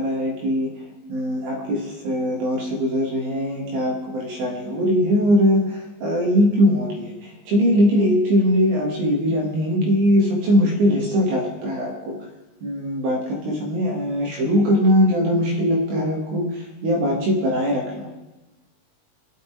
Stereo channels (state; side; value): late; left; 19 ms